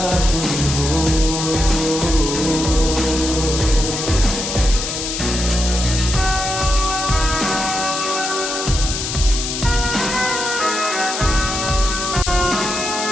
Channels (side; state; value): left; noise; hiss, 4 dB below the sound